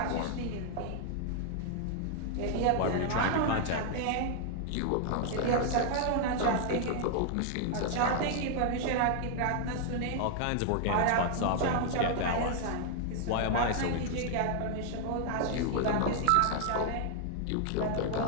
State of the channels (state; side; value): different; both; correlation 0.00